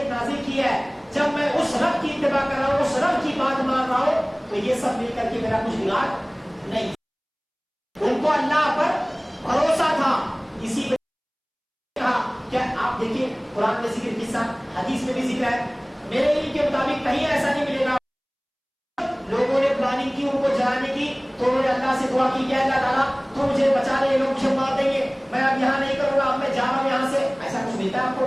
کی ہے, جب میں اس رب کی اتباع کر رہا ہوں, اس رب کی بات مان رہا ہوں, تو یہ سب مل کر کے میرا کچھ بگاڑ نہیں. ان کو اللہ پر بھروسہ تھا. اسی میں کہا کیا آپ دیکھیں قرآن میں ذکر قصہ, حدیث میں بھی ذکر ہے. میرے علم کے مطابق کہیں ایسا نہیں ملے گا لوگوں نے پلاننگ کی ان کو جلانے کی تو انہوں نے اللہ سے دعا کی کہ اللہ تعالیٰ تو مجھے بچا لے, لوگ مجھے مار دیں گے, میں اب یہاں نہیں کروں گا, اب میں جا رہا ہوں یہاں سے. ایسا کچھ ملتا ہے آپ کو؟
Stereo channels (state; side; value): identical; both; correlation 1.00